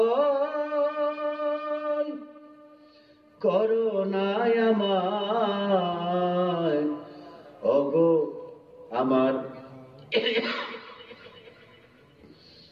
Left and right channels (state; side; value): identical; both; correlation 1.00